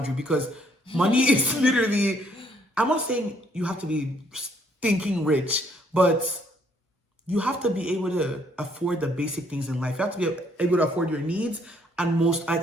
you because money is literally, I'm not saying you have to be stinking rich, but you have to be able to afford the basic things in life. You have to be able to afford your needs and most,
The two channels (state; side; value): normal; both; correlation 0.66